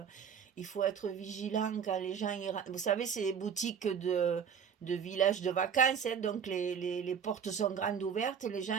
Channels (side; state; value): left; quieter; 7.3 dB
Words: il faut être vigilant quand les gens Vous savez, c'est les boutiques de villages de vacances, hein, donc les portes sont grandes ouvertes, les